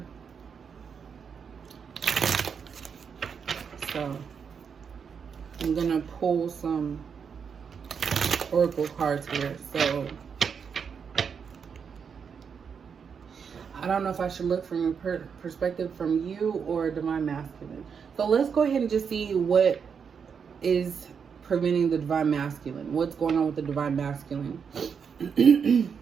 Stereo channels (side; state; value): left; quieter; 6.5 dB